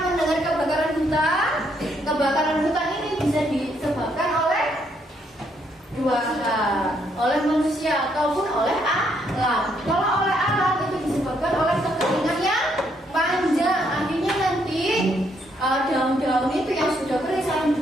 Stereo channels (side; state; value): both; normal; correlation 0.73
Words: mendengar kebakaran hutan? Kebakaran hutan ini bisa disebabkan oleh 2 hal, oleh manusia ataupun oleh alam. Kalau oleh alam itu disebabkan oleh kekeringan yang panjang. Akhirnya nanti daun-daun itu yang sudah kering saling